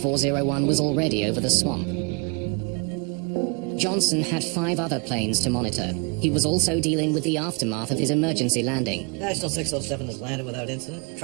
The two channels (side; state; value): left; quieter; 33.4 dB